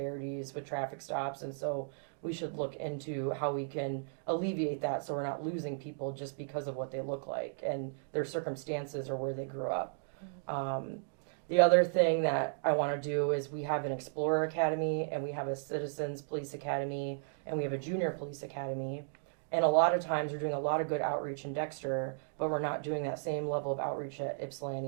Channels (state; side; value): silent; left; digital silence